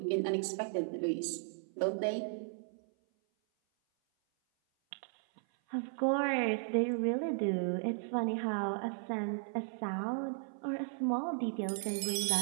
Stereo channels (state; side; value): silent; left; 54 dB below the other